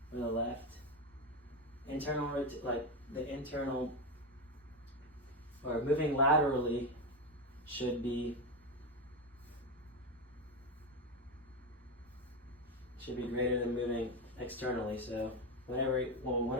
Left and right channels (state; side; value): normal; both; correlation 0.13